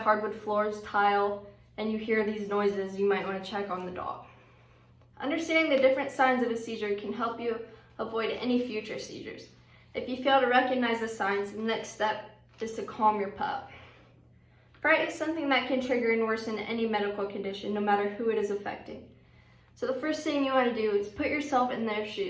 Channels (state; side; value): identical; both; correlation 1.00